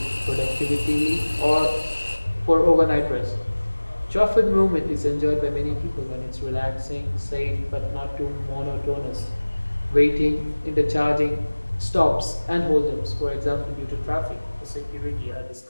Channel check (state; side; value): inverted; both; correlation -1.00